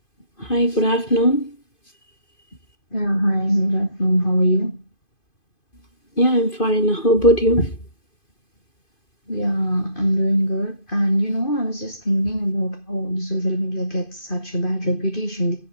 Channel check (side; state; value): right; late; 2.5 ms